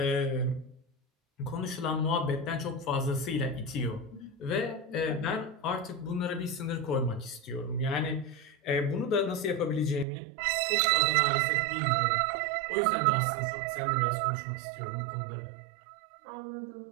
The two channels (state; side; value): drops out; left; at 10.1 s